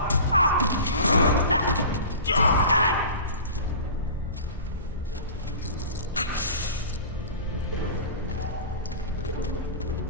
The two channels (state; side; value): inverted; both; correlation -0.36